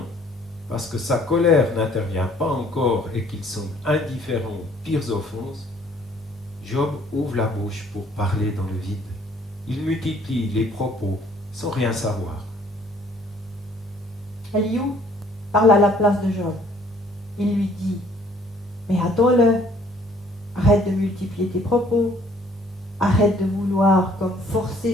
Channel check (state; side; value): normal; both; correlation 0.60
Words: parce que sa colère n'intervient pas encore et qu'ils sont indifférents aux pires offenses, Job ouvre la bouche pour parler dans le vide. Il multiplie les propos sans rien savoir. Elihu parle à la place de Job. Il lui dit, mais attends-le, arrête de multiplier tes propos, arrête de vouloir comme forcer